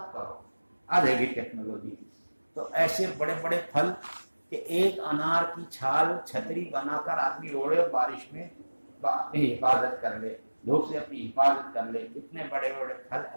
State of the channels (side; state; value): both; inverted; correlation -1.00